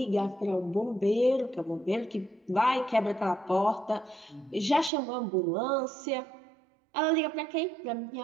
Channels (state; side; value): drops out; left; at 4.9 s